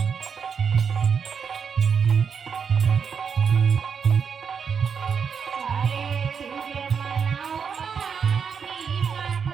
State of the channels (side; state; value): left; quieter; 6.5 dB